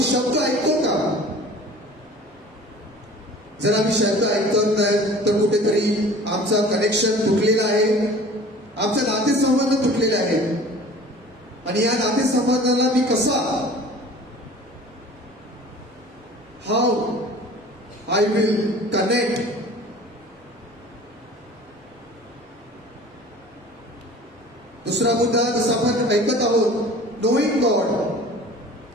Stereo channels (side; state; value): both; normal; correlation 0.44